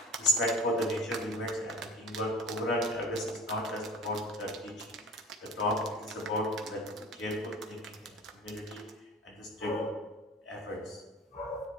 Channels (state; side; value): normal; both; correlation 0.39